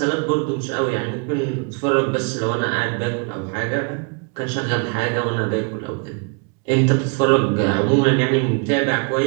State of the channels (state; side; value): quieter; left; 35.9 dB